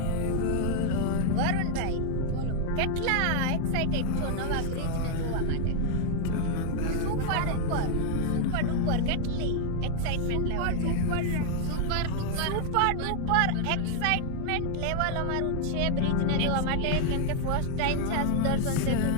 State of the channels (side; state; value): both; different; correlation 0.00